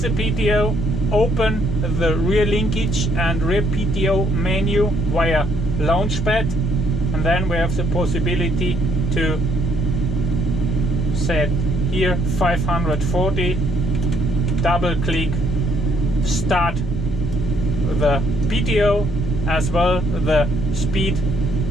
PTO, open the rear linkage and rear PTO menu via launchpad, and then we have the possibility to set here 540, double click, start the PTO as well the speed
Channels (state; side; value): normal; both; correlation 0.69